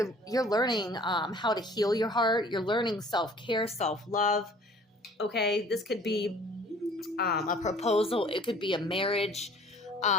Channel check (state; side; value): normal; both; correlation 0.52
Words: you're learning how to heal your heart. You're learning self-care, self-love. Okay, this could be a proposal. It could be a marriage,